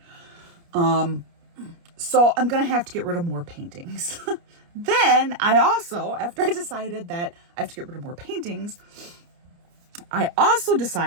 So I'm going to have to get rid of more paintings. Then I also, after I decided that I have to get rid of more paintings, I also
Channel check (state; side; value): late; left; 29 ms